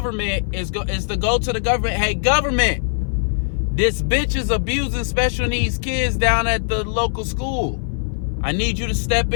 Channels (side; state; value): right; silent; 58 dB below the other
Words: is to go to the government. Hey, government, this bitch is abusing special needs kids down at the local school. I need you to step